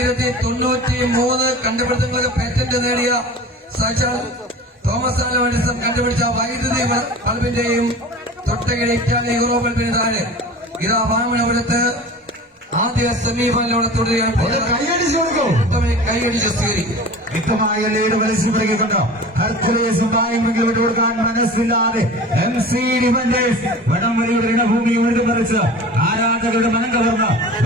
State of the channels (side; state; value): both; normal; correlation 0.38